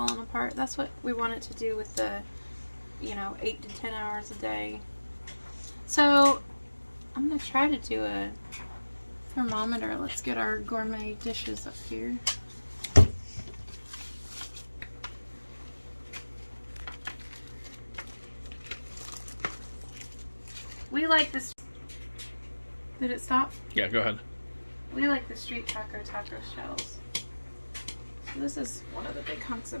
apart. That's what we want it to do with the, 8 to 10 hours a day. So I'm gonna try to do a thermometer. Let's get our gourmet dishes up here. We like this. Did it stop? Yeah, go ahead. We like the street taco shells. So this is one of the big hunks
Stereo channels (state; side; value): inverted; both; correlation -1.00